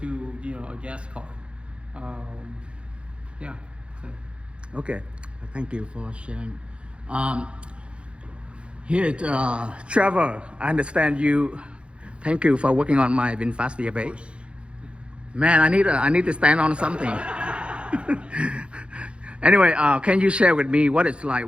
a gas car. Yeah. So. Okay, thank you for sharing. Here, Trevor, I understand you. Thank you for working on my VinFast VF8. Man, I need to stand on something. Anyway, can you share with me what it's like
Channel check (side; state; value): left; late; 0.059 ms